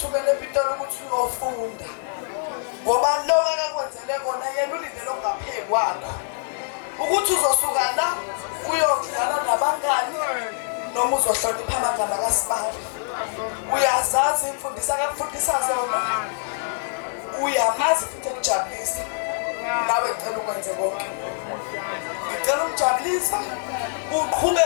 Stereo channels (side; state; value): right; silent; digital silence